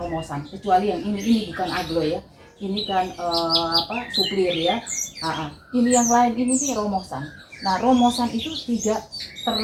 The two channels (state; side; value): identical; both; correlation 1.00